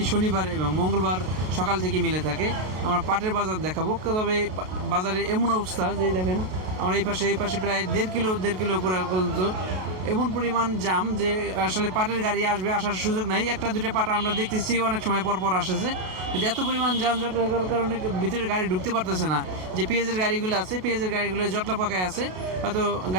শনিবার এবং মঙ্গলবার সকাল থেকে মিলে থাকে। আমরা পাটের বাজার দেখাবো, তবে বাজারের এমন অবস্থা যে দেখেন আমরা এই পাশে প্রায় দেড় কিলো উপরে পর্যন্ত এমন পরিমাণ জাম যে আসলে পাটের গাড়ি আসার সুযোগ নাই। একটা দুটো পাট আমরা দেখতেছি অনেক সময় পর আসতেছে, কিন্তু এত পরিমাণ যানজট হওয়ার কারণে ভিতরে গাড়ি ঢুকতে পারতেছে না। যে পেঁয়াজের গাড়িগুলো আছে, পেঁয়াজের গাড়িগুলো জটলা পাকায় আছে, হয়তো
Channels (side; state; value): left; late; 33 ms